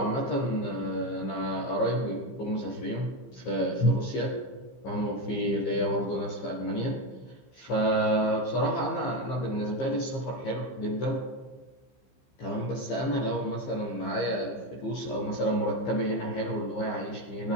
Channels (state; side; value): late; right; 15 ms